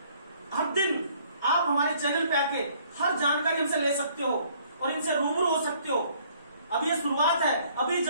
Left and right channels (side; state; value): both; inverted; correlation -0.61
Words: हर दिन आप हमारे चैनल पे आके हर जानकारी हमसे ले सकते हो और इनसे रूबरू हो सकते हो। अब ये शुरुआत है, अभी